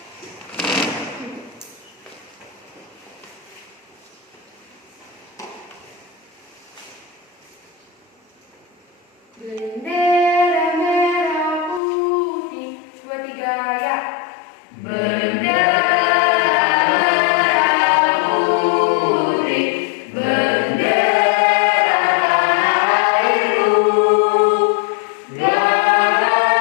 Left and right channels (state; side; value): drops out; right; at 11.8 s